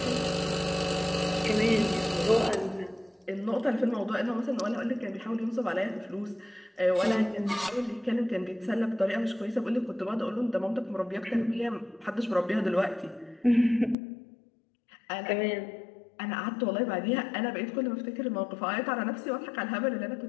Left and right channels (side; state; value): right; drops out; at 14.0 s